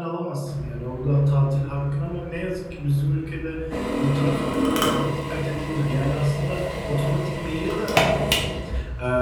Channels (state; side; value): identical; both; correlation 1.00